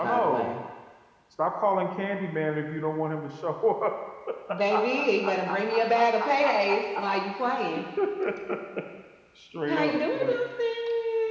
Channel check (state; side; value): identical; both; correlation 1.00